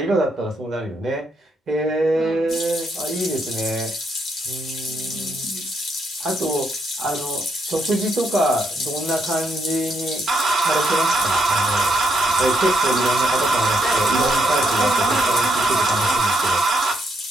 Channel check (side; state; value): both; normal; correlation 0.76